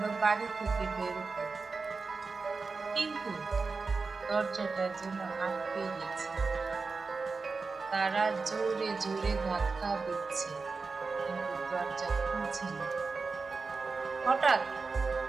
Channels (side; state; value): left; quieter; 4.3 dB